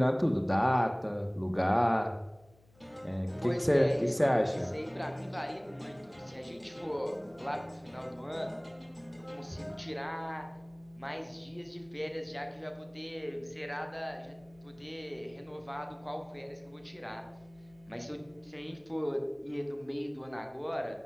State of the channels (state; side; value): noise; left; hum, 28 dB below the sound